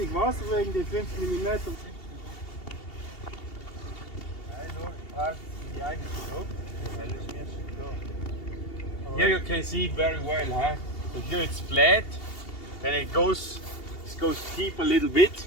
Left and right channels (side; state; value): right; late; 2.7 ms